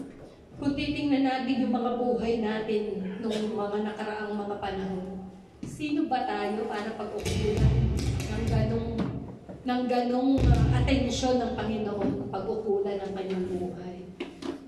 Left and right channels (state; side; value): identical; both; correlation 1.00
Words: Kung titingnan natin yung mga buhay natin nung mga nakaraang mga panahon, sino ba tayo para pag-ukulan ng ganong atensyon ng Panginoon, pag-ukulan ng kanyang buhay.